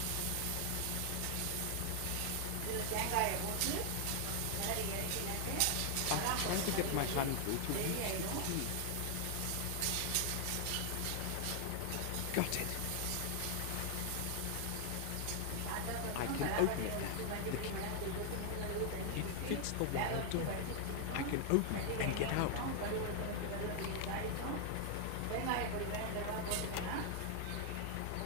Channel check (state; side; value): different; both; correlation 0.00